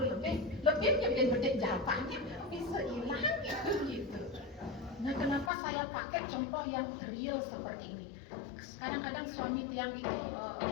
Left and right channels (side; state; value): right; drops out; at 5.5 s